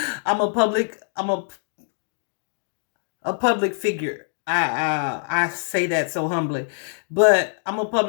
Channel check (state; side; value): silent; right; digital silence